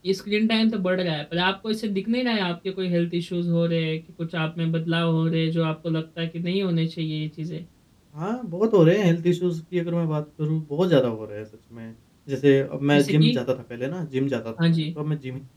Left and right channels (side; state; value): both; identical; correlation 1.00